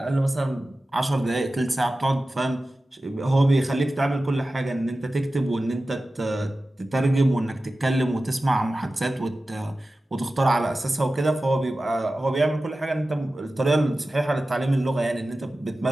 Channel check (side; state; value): both; normal; correlation 0.95